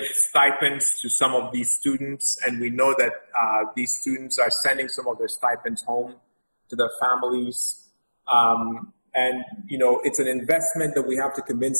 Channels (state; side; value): inverted; both; correlation -1.00